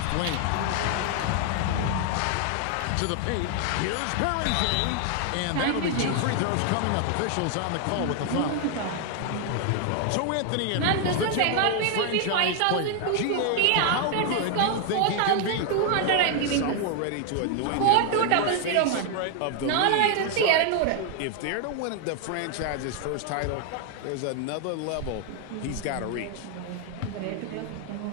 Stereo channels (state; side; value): different; both; correlation 0.00